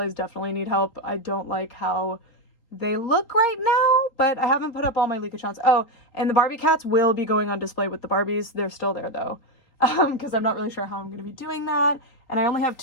definitely need help. I don't like how they look right now, but I haven't put up all my Liga-chans. Oh, and the Barbie cats will be going on display with the Barbies. They're still there, though, because I'm not really sure how I'm going to be doing that. And I only have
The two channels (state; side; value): late; right; 3.8 ms